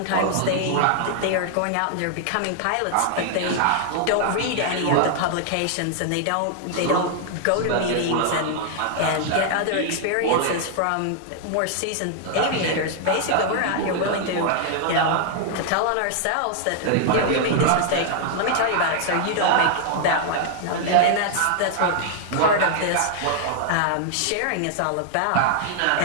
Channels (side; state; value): both; different; correlation 0.00